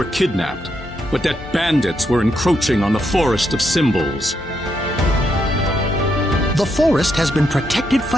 kidnapped, but that bandits were encroaching on the Forest of Symbols. The forest has been protected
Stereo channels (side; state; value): both; normal; correlation 0.79